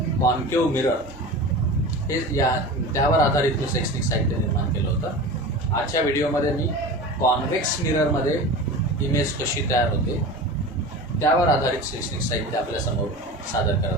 concave mirror हे त्यावर आधारित मी शैक्षणिक साहित्य निर्माण केलं होतं. आजच्या व्हिडिओमध्ये मी कॉन्व्हेक्स मिररमध्ये इमेज कशी तयार होते त्यावर आधारित शैक्षणिक साहित्य आपल्यासमोर सादर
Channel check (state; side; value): normal; both; correlation 0.32